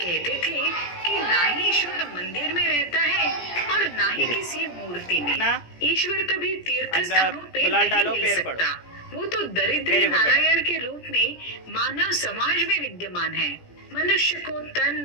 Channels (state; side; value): late; right; 17 ms